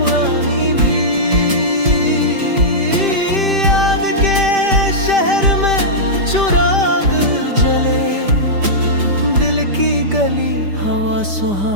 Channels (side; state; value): left; late; 5.1 ms